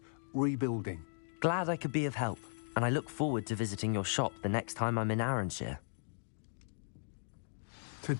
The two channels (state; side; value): silent; right; digital silence